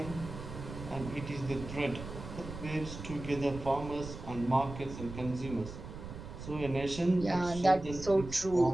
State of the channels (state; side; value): noise; right; rumble, 10 dB below the sound